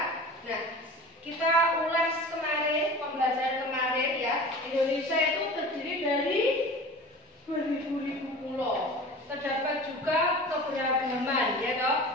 Nah, kita ulas kemarin, pembelajaran kemarin ya. Indonesia itu terdiri dari beribu-ribu pulau. Terdapat juga keberagaman, ya toh,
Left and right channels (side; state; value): both; normal; correlation 0.38